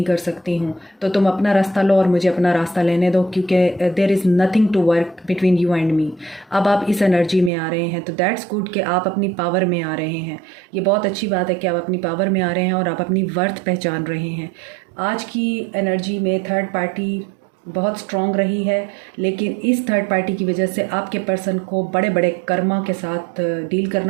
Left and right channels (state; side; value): drops out; left; at 7.5 s